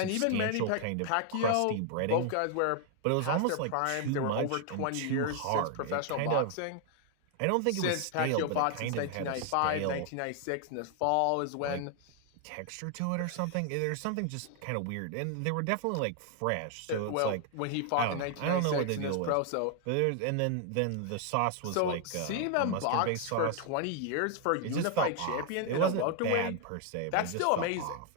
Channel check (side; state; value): both; different; correlation 0.00